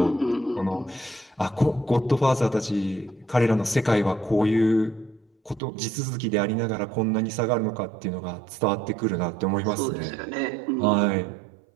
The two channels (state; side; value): drops out; left; at 5.6 s